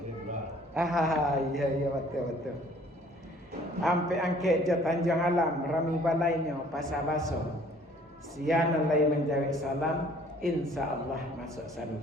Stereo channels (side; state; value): both; normal; correlation 0.56